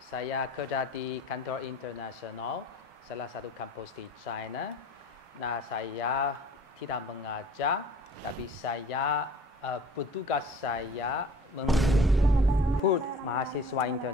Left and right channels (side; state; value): both; normal; correlation 0.47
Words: kerja di kantor internasional, salah satu kampus di China. Nah, saya tidak mengajar, tapi saya petugas saya menjemput mahasiswa